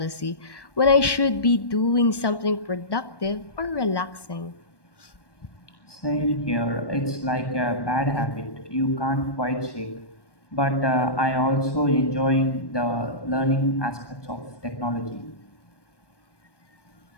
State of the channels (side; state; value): right; late; 1.1 ms